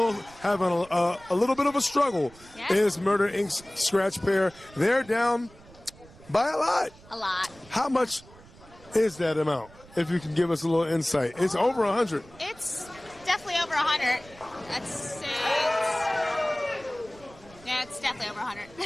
having a little bit of a struggle is Murder Inc.'s scratch pair. They're down by a lot. A lot. How much is that amount? If you can give us a little insight. It's over 100. It's definitely over 100. Let's say it's definitely over 100.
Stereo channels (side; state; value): right; noise; rumble, 23 dB below the sound